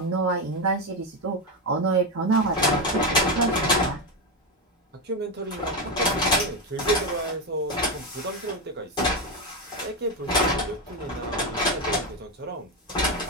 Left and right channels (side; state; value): both; normal; correlation 0.11